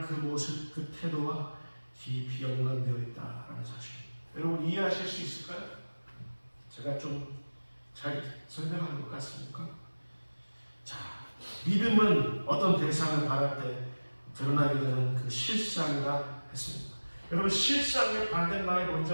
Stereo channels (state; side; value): inverted; both; correlation -1.00